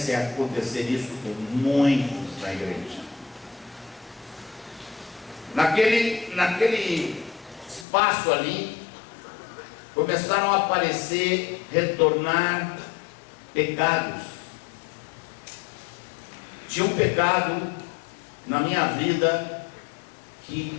é acontecer isso com muitos na igreja. Naquele espaço ali, começaram a aparecer, retornar pecados. Tinha um pecado na minha vida que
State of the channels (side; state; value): right; drops out; at 7.9 s